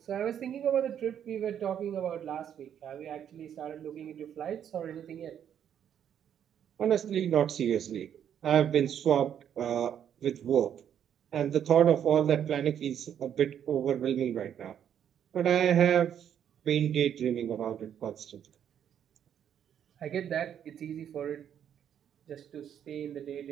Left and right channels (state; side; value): quieter; left; 9.3 dB